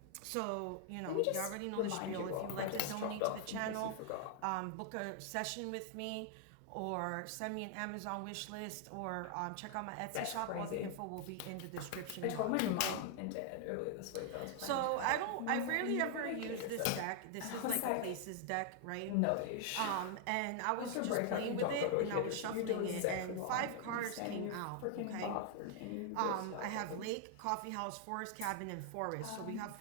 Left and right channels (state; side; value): different; both; correlation 0.00